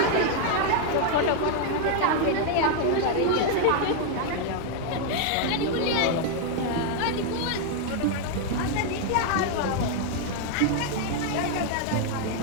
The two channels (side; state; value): both; different; correlation 0.00